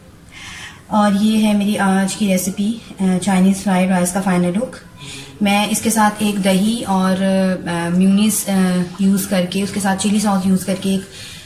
और ये है मेरी आज की रेसिपी, चाइनीज़ फ्राइड राइस का फाइनल लुक। मैं इसके साथ एक दही और म्यूनीस यूज़ करके, उसके साथ चिली सॉस यूज़ करके एक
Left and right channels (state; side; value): identical; both; correlation 1.00